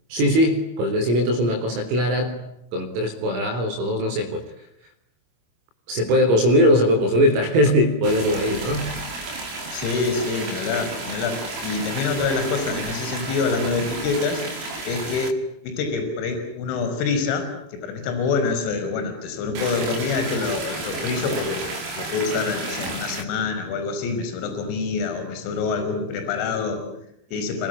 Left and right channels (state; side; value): late; left; 25 ms